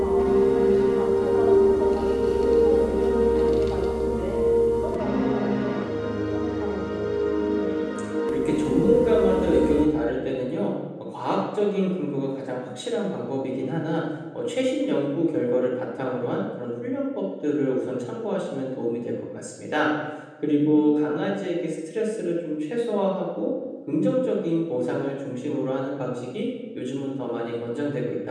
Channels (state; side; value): identical; both; correlation 1.00